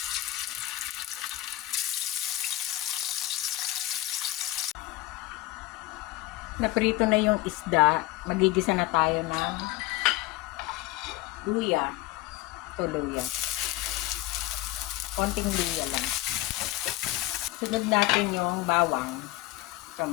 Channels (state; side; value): quieter; right; 17.7 dB